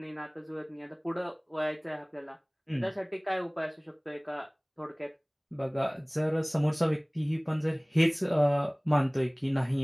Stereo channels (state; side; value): identical; both; correlation 1.00